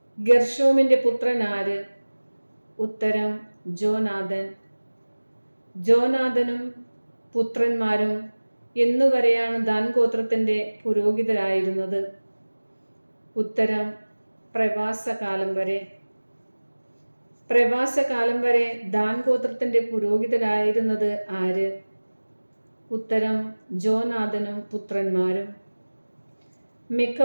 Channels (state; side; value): inverted; both; correlation -1.00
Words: ഗെർഷോമിന്റെ പുത്രൻ ആര്? ഉത്തരം ജോനാഥൻ. ജോനാഥനും പുത്രന്മാരും എന്നുവരെയാണ് ദാൻ ഗോത്രത്തിന്റെ പുരോഹിതരായിരുന്നത്? ഉത്തരം പ്രവാസകാലം വരെ. പ്രവാസകാലം വരെ ദാൻ ഗോത്രത്തിന്റെ പുരോഹിതരായിരുന്നത് ആര്? ഉത്തരം ജോനാഥനും പുത്രന്മാരും. മിക്ക